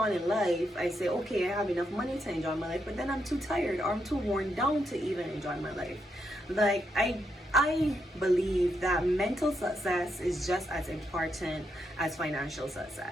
in life I say, okay, I have enough money to enjoy my life, but then I'm too tired or I'm too worn down to even enjoy my life. Like I believe that mental success is just as important as financial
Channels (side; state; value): both; normal; correlation 0.81